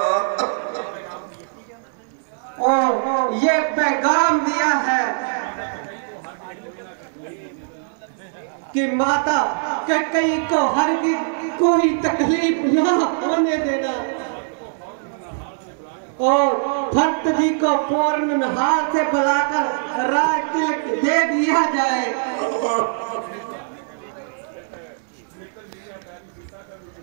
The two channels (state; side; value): silent; left; digital silence